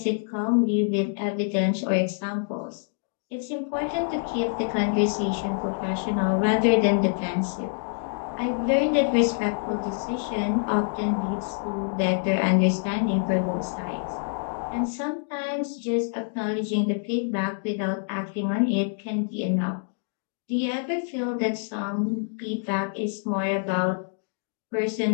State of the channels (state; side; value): silent; right; 61 dB below the other